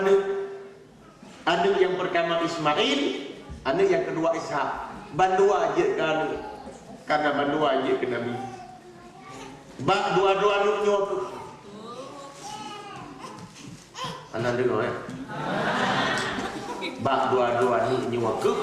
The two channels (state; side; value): identical; both; correlation 1.00